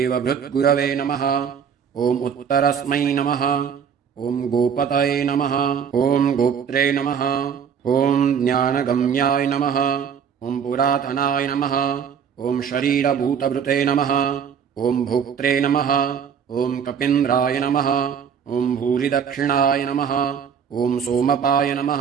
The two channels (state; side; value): quieter; left; 7.4 dB